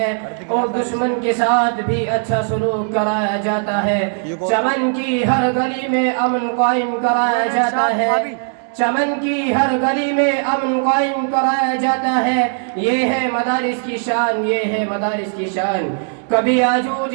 اور دشمن کے ساتھ بھی اچھا سلوک کرایا جاتا ہے. چمن کی ہر گلی میں امن قائم کرایا جاتا ہے. چمن کی ہر گلی میں امن قائم کرایا جاتا ہے. یہ ہے مدارس کی شان، یہ ہے مدارس کی شان. کبھی آجوج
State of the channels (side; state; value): left; silent; digital silence